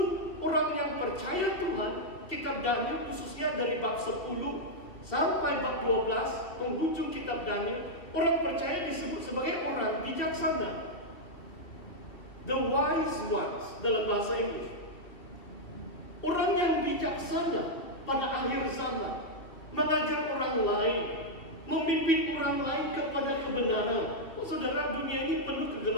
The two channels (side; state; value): right; late; 2.4 ms